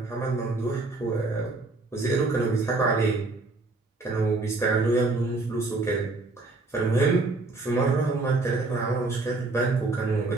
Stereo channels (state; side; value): quieter; left; 3.3 dB